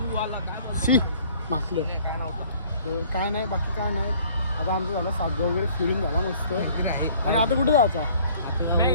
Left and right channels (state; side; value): inverted; both; correlation -0.55